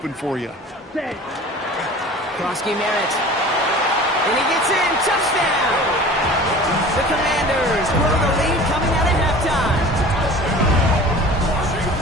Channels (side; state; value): both; normal; correlation 0.41